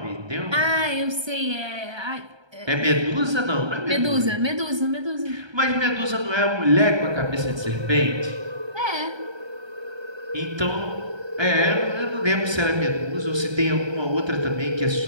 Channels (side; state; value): left; late; 1.3 ms